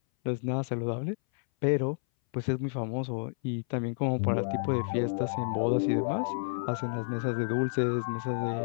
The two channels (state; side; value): silent; right; 58 dB below the other